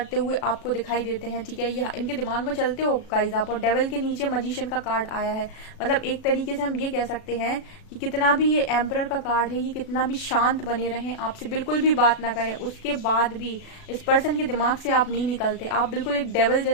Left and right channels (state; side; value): late; right; 37 ms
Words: हुए आपको दिखाई देते हैं, ठीक है। ये इनके दिमाग में चलते हो गाइस आप। और डेविल के नीचे मैजिशियन का कार्ड आया है, मतलब एक तरीके से हम ये कह सकते हैं कि कितना भी ये एम्परर का कार्ड है, ये कितना भी शांत बने रहें, आपसे बिल्कुल भी बात ना करें, उसके बाद भी इस पर्सन के दिमाग से आप नहीं निकलते। आप बिल्कुल एक डेविल